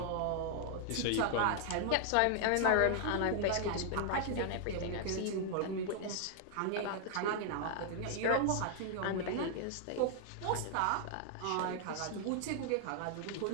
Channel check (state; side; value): different; both; correlation 0.00